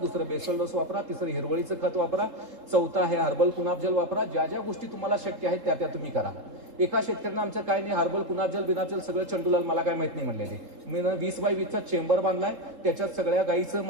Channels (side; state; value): left; late; 3.7 ms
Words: बेसल डोस वापरा, तिसरं हिरवळीचं खत वापरा, चौथा आहे हर्बल कुनाब जल वापरा. ज्या ज्या गोष्टी तुम्हाला शक्य आहेत त्या तुम्ही करा. एका शेतकऱ्यानं आमचं काय नाही हर्बल कुनाब जल बिनाब जल सगळं चंडूलाल मला काय माहित नाही म्हणलेले. मी 20x20चा चेंबर बांधलाय, त्याच्यात सगळ्या गाईचं